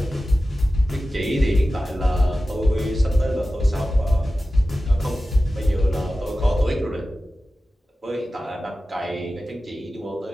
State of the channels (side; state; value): both; normal; correlation 0.95